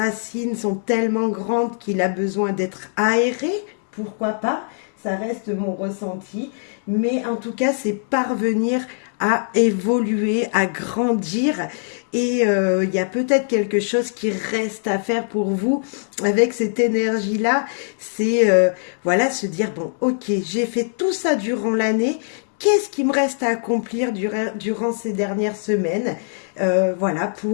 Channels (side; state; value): right; silent; digital silence